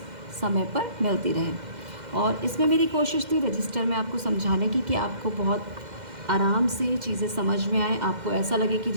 समय पर मिलती रहें। और इसमें मेरी कोशिश थी रजिस्टर में आपको समझाने की कि आपको बहुत आराम से चीज़ें समझ में आए, आपको ऐसा लगे कि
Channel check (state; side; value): late; left; 2.1 ms